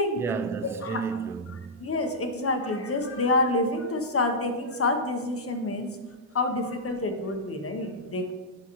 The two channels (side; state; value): both; normal; correlation -0.08